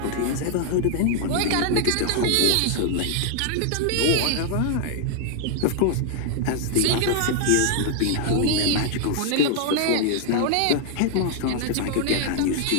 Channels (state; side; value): different; both; correlation 0.00